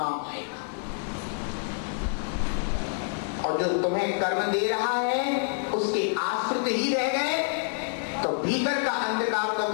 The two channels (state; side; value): silent; right; 60 dB below the other